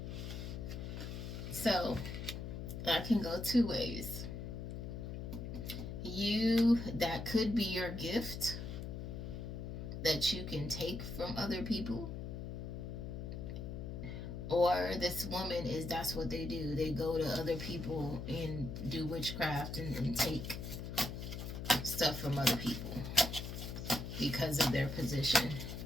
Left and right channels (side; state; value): left; noise; hum, 6 dB below the sound